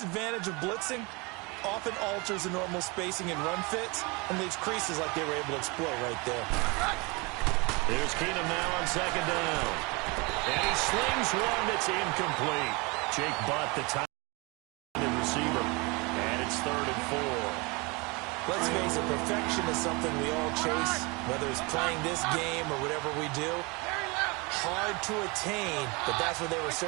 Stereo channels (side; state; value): left; quieter; 27.6 dB